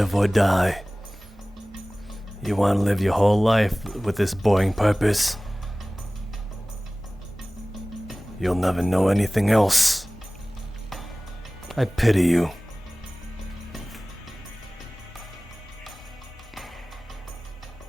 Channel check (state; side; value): normal; both; correlation 0.98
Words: or die. You want to live your whole life with this boring purpose. You'll never know anything else. I pity you.